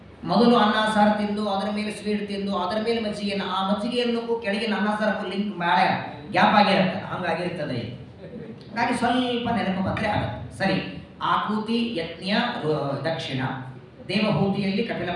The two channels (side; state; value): both; identical; correlation 1.00